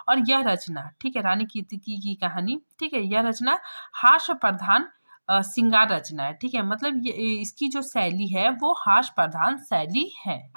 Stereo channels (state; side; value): inverted; both; correlation -1.00